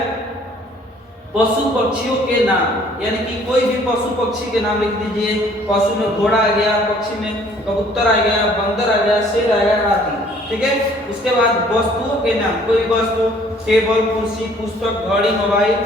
पशु पक्षियों के नाम, यानी कि कोई भी पशु पक्षी के नाम लिख दीजिए। पशु में घोड़ा आ गया, पक्षी में कबूतर आ गया, बंदर आ गया, शेर आ गया आदि, ठीक है। उसके बाद वस्तुओं के नाम, कोई वस्तु, टेबल, कुर्सी, पुस्तक, घड़ी, मोबाइल,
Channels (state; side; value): normal; both; correlation 0.57